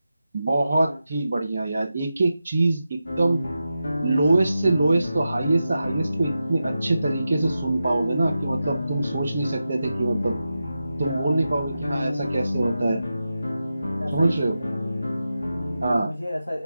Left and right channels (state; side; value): inverted; both; correlation -0.91